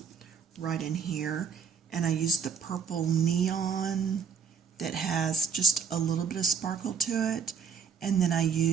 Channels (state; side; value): quieter; left; 6.5 dB